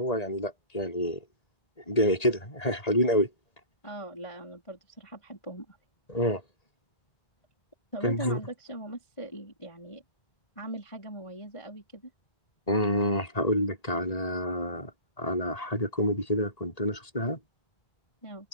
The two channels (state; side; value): late; right; 1.8 ms